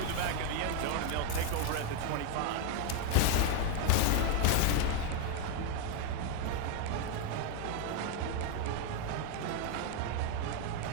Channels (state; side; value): different; both; correlation 0.00